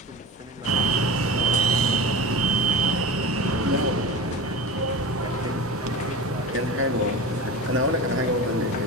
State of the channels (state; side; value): normal; both; correlation 0.30